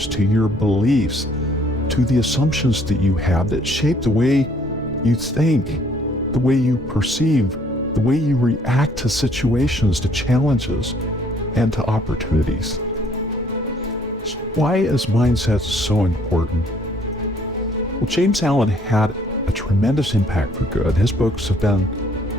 to your beliefs, to the assumptions that you have that shape the way you think, the way you perceive, the way you react to situations, to challenges, and to opportunities. So why is mindset so important? Well, James Allen had a tremendous impact for good. His books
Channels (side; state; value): both; normal; correlation 0.62